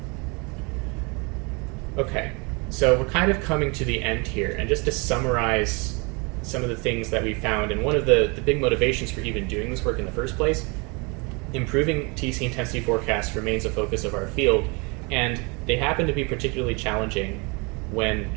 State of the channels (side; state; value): left; quieter; 30.1 dB